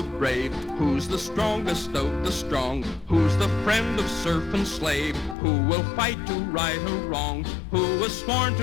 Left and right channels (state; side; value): drops out; right; at 5.4 s